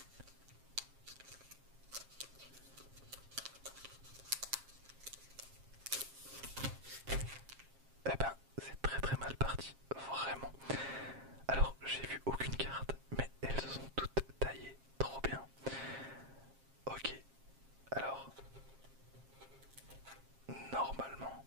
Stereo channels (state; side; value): late; left; 7.5 ms